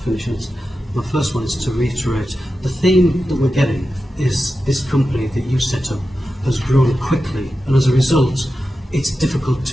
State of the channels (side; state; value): both; normal; correlation 0.91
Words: this. My first one is to reiterate the theme that we're getting is this company that you set up has grown quickly, and as a result, it's difficult